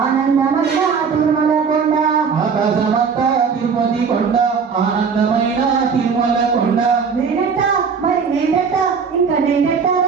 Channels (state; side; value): quieter; left; 5.9 dB